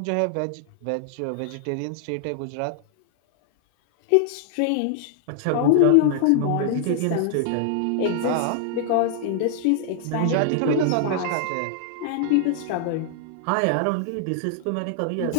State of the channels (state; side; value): different; both; correlation -0.01